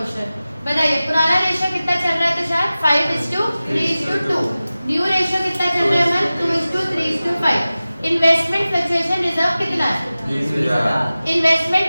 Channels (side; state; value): both; inverted; correlation -0.96